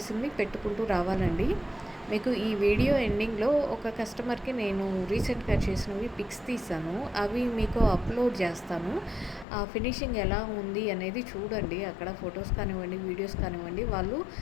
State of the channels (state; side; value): drops out; right; at 9.5 s